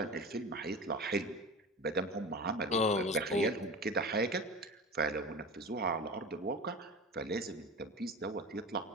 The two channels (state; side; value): normal; both; correlation 0.31